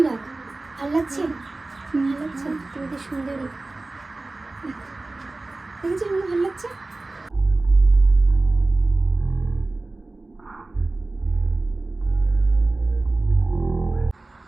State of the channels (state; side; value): quieter; left; 3.1 dB